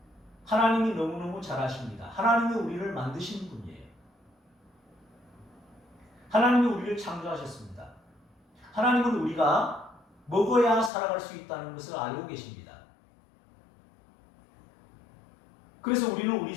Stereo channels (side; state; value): right; drops out; at 10.9 s